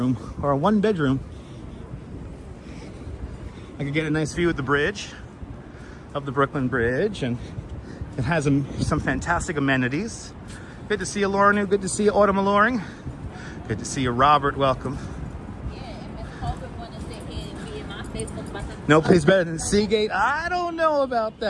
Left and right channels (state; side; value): identical; both; correlation 1.00